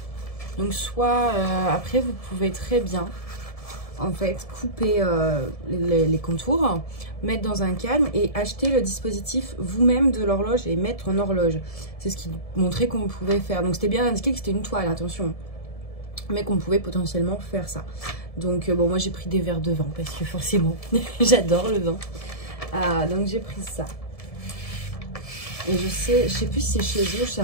Donc soit, après, vous pouvez très bien, en fait, couper les contours, mettre dans un cadre et acheter le dispositif vous-même de l'horloge et mettre en horloge. C'est ce qui montrait qu'on pouvait faire. Donc c'était bien indiqué que c'était une toile, attention. Mais qu'on pouvait potentiellement faire ça. Donc bon, moi j'ai pris des verres de vin parce que forcément, j'adore le vin. Donc j'ai pris ça. Et je sais plus si c'est chez eux, chez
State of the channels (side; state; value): right; late; 1.7 ms